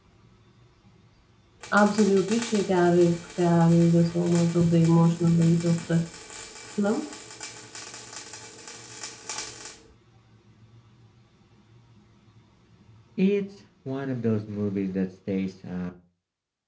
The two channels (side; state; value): both; identical; correlation 1.00